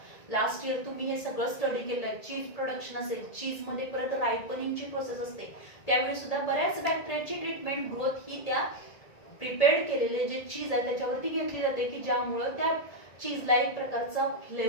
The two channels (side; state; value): right; late; 1.7 ms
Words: लास्ट इयर तुम्ही हे सगळं स्टडी केलंय. चीज प्रोडक्शन असेल, चीज मध्ये परत रायपनिंगची प्रोसेस असते, त्यावेळी सुद्धा बऱ्याच बॅक्टेरियाची ट्रीटमेंट ग्रोथ ही त्या प्रिपेअर्ड केलेले जे चीज आहे त्याच्यावरती घेतली जाते की ज्यामुळे त्या चीजला एक प्रकारचा